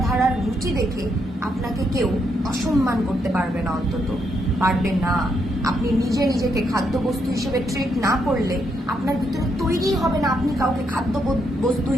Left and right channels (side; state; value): both; normal; correlation 0.78